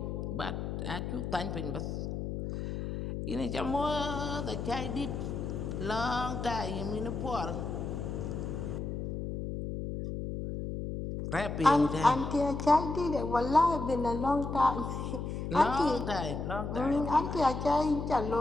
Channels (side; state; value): left; noise; hum, 4 dB below the sound